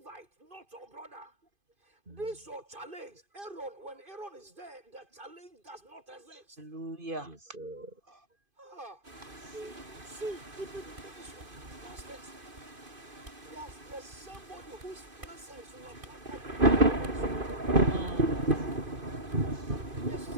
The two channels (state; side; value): late; left; 2.5 ms